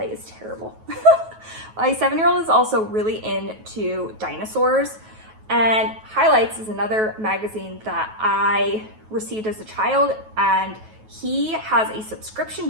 is terrible. My 7-year-old is also really into dinosaurs, and Highlights is another magazine that I received as a child, and he has a subscription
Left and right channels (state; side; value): late; left; 9.3 ms